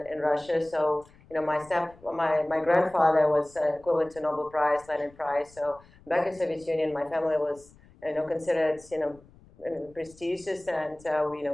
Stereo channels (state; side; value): noise; left; rumble, 26 dB below the sound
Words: Russia. So my grandfather was equivalent to Nobel Prize, Lenin Prize. So back in Soviet Union, my family was considered prestigious, and